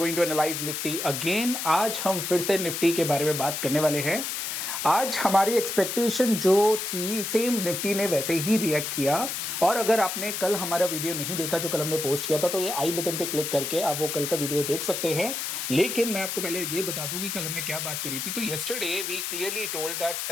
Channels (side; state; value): left; noise; hiss, 3 dB below the sound